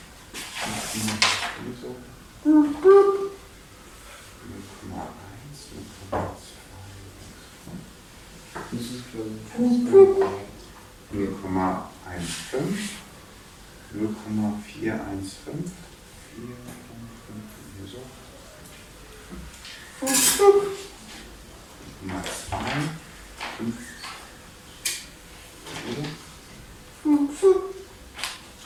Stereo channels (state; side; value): identical; both; correlation 1.00